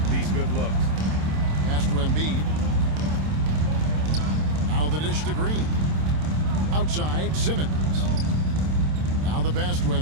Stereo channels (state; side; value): late; left; 27 ms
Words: these good looks. Pass to Embiid. Now the dish to Green. Outside Simmons. Now the pass to